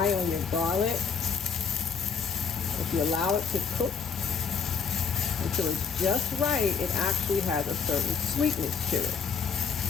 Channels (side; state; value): right; quieter; 6.0 dB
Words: on your garlic. If you allow it to cook until it's just right, it actually has a certain sweetness to it.